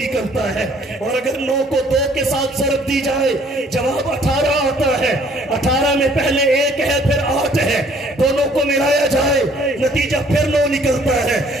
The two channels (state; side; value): normal; both; correlation 0.60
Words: ہے، اور اگر 9 کو 2 کے ساتھ ضرب دی جائے جواب 18 آتا ہے۔ 18 میں پہلے 1 ہے پھر 8 ہے، دونوں کو ملایا جائے نتیجہ پھر 9 نکلتا ہے۔